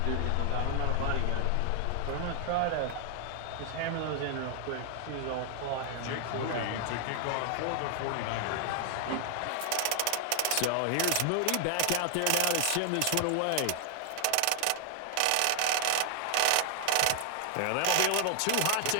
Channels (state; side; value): different; both; correlation 0.00